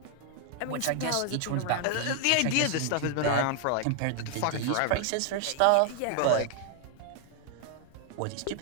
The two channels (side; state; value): both; different; correlation 0.00